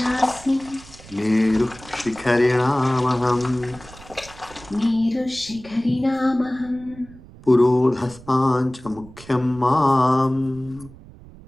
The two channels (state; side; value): noise; right; rumble, 20 dB below the sound